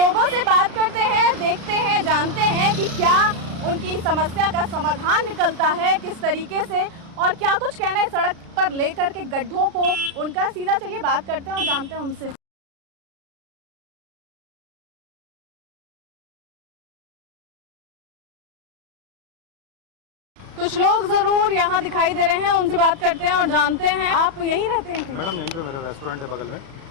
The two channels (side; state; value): left; late; 36 ms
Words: से बात करते हैं, देखते हैं, जानते हैं कि क्या उनकी समस्या का समाधान निकलता है, किस तरीके से और क्या कुछ कहना है सड़क पर लेकर के गड्ढों को उनका। सीधा चलिए बात करते हैं और जानते हैं उनसे। कुछ लोग जरूर यहाँ दिखाई दे रहे हैं, उनसे बात करते हैं और जानते हैं। आप यहीं रहते हैं? मैडम यहीं पे मेरा रेस्टोरेंट है बगल में।